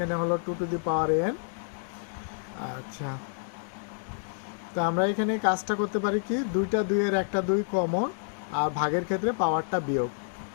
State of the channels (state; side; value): silent; right; digital silence